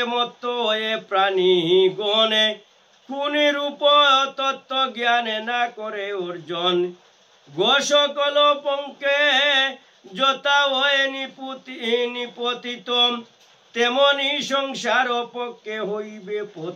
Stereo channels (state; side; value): identical; both; correlation 1.00